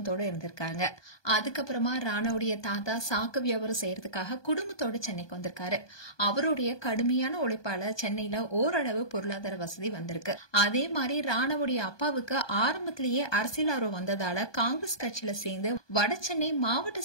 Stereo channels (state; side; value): late; right; 1.2 ms